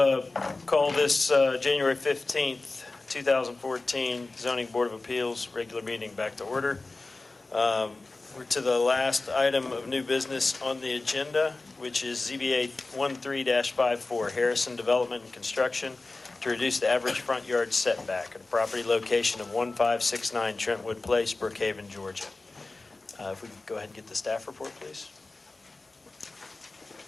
call this January 15th, 2014 Zoning Board of Appeals regular meeting back to order. We're to the last item of new business on the agenda, which is ZBA 13-54, Harrison Development and Construction, to reduce the average front yard setback at a property location of 1569 Trentwood Place, Brookhaven, Georgia. If we could go ahead and get the staff report, please.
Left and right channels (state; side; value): quieter; right; 3.4 dB